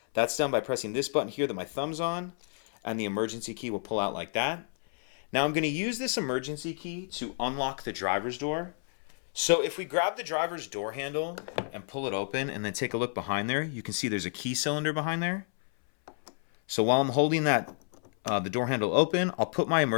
That's done by pressing this button here that my thumb's on, and the emergency key will pull out like that. Now I'm going to use this emergency key to unlock the driver's door. So if we grab the driver's door handle and pull it open and then take a look behind there, you can see there's a key cylinder behind there. So while I'm holding that the door handle open, I'll put my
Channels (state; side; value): silent; right; 58 dB below the other